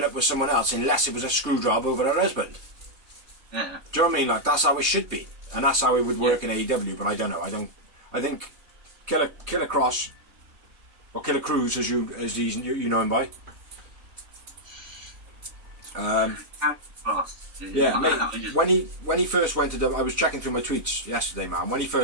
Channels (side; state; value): left; late; 3.2 ms